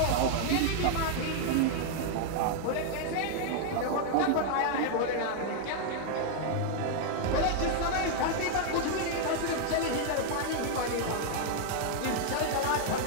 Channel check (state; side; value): different; both; correlation 0.00